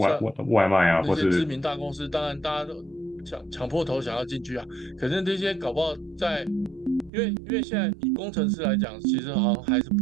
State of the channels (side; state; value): left; drops out; at 7.1 s